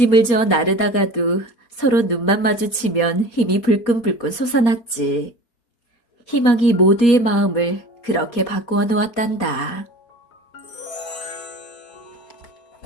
져 나르다가도 서로 눈만 마주치면 힘이 불끈불끈 솟아났지. 희망이 모두의 마음을 그렇게 바꾸어 놓았단다.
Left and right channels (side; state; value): right; late; 4.2 ms